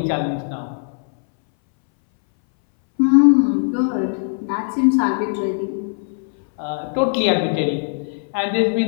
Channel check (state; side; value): silent; right; 63 dB below the other